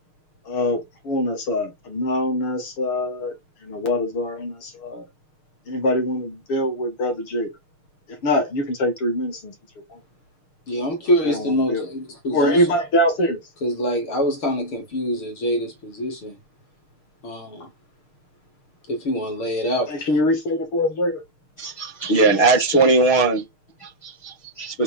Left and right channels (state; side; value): late; right; 6.5 ms